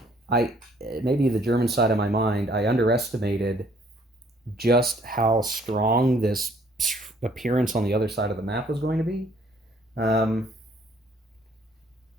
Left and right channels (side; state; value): both; normal; correlation 0.62